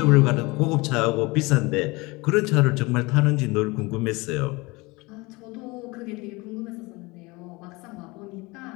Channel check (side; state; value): right; quieter; 24.2 dB